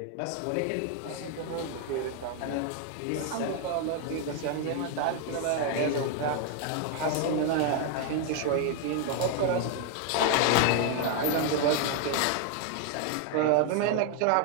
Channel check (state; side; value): different; both; correlation 0.01